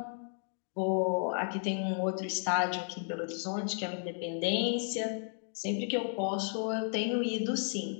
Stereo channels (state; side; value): silent; right; 55 dB below the other